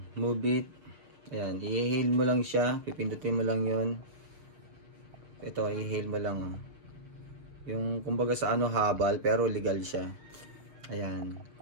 Mubit. Ayan, i-hail mo lang siya, pipindutin mo lang yun. Ito, i-hail mo lang. Yung, kumbaga sa habal, pero legal siya. Ayan,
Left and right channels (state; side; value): late; left; 6.5 ms